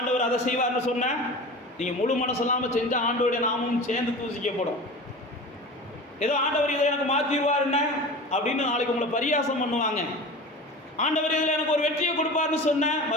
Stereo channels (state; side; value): normal; both; correlation 0.34